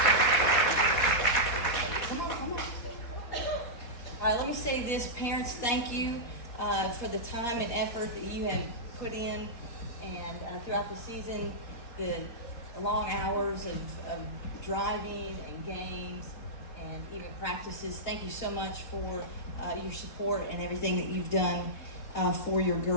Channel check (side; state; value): right; late; 4.2 ms